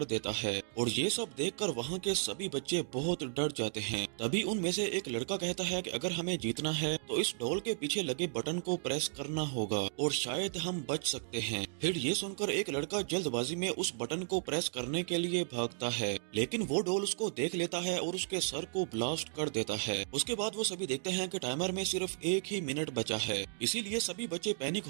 देता है और ये सब देखकर वहाँ के सभी बच्चे बहुत डर जाते हैं। तभी उनमें से एक लड़का कहता है कि अगर हमें जीतना है तो इस डॉल के पीछे लगे बटन को प्रेस करना होगा और शायद हम बच सकते हैं। फिर ये सुनकर एक लड़का जल्दबाजी में उस बटन को प्रेस करने के लिए भागता है लेकिन वो डॉल उसको देख लेता है और उसके सर को ब्लास्ट कर देता है। उसके बाद वो सभी देखते हैं कि टाइमर में सिर्फ 1 ही मिनट बचा है, इसीलिए सभी बच्चे पैनिक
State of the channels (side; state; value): left; silent; digital silence